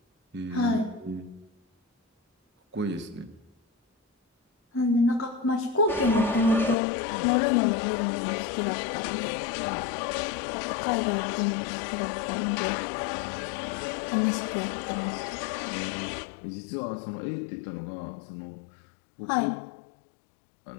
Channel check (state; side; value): drops out; right; at 6.8 s